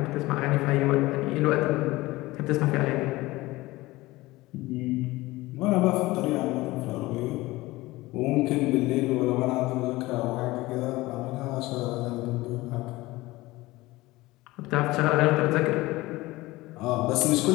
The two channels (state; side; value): quieter; right; 19.6 dB